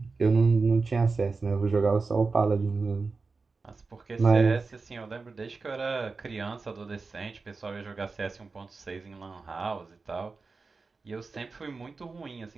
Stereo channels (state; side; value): quieter; left; 4.2 dB